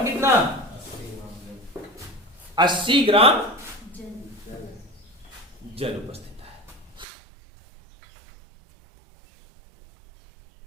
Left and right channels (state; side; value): drops out; left; at 7.1 s